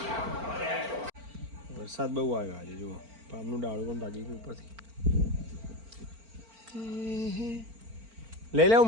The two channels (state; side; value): late; left; 4.4 ms